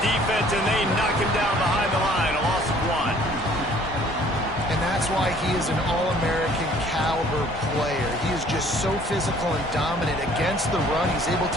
defense, and they knock him down behind the line. A loss of 1. And that's why he is an All-American caliber player. He is just so physical and dominant against the run. He's able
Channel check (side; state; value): both; normal; correlation 0.56